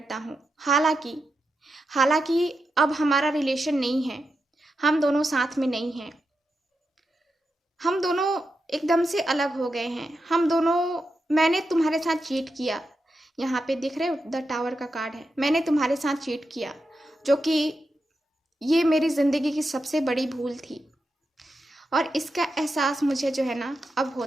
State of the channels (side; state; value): both; normal; correlation 0.88